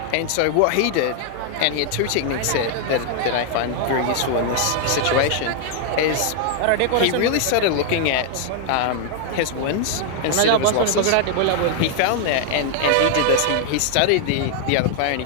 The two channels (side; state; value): both; different; correlation 0.00